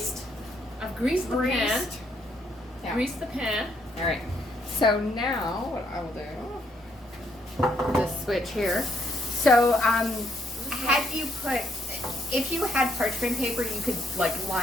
I've greased the pan. Yeah. Greased the pan. Alright. So now what I will do, this switch here. So had you put, if you had parchment paper, you could like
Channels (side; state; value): both; normal; correlation 0.72